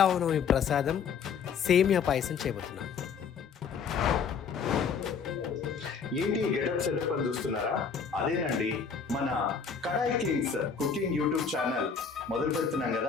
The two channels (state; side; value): quieter; right; 6.1 dB